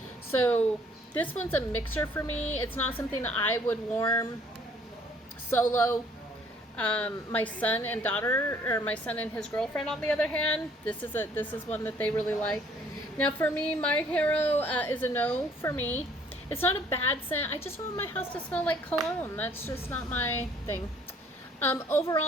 So this one's a mixer for me. It's not something that I would warm solo. My son and daughter, or my son and his girlfriend, on the other hand, this is one that they really like. Now for me, My Hero is a no for me. It's not a bad scent. I just want my house to smell like cologne. That's just not my thing.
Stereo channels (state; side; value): normal; both; correlation 0.59